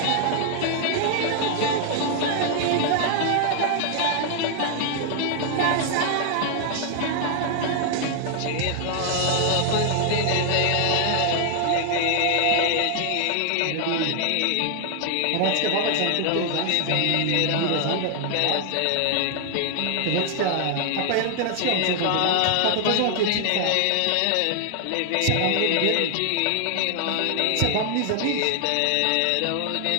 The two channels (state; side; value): different; both; correlation 0.00